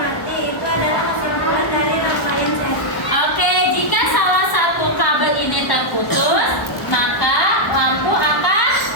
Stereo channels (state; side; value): late; right; 1.1 ms